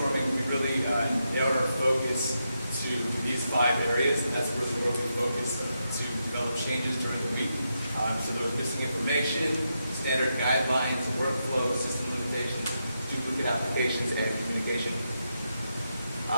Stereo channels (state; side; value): inverted; both; correlation -0.85